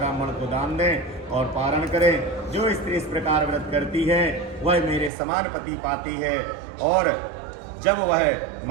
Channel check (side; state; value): left; drops out; at 5.1 s